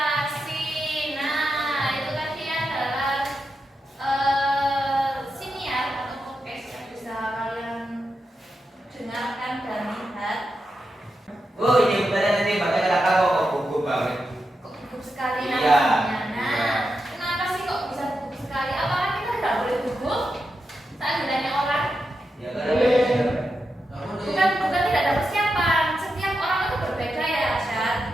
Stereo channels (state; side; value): normal; both; correlation 0.87